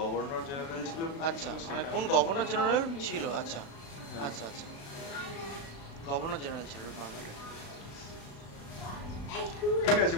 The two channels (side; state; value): right; late; 36 ms